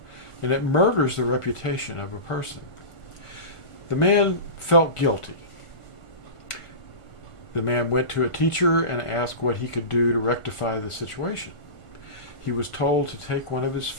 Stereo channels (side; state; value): right; late; 1.4 ms